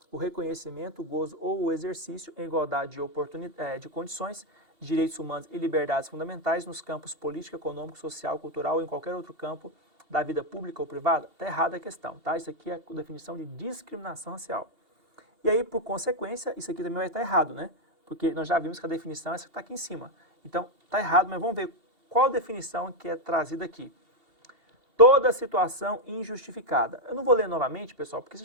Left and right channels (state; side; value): late; left; 2.7 ms